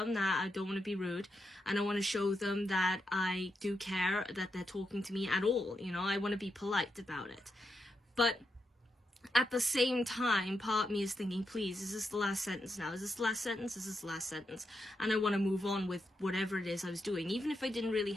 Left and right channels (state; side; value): normal; both; correlation 0.84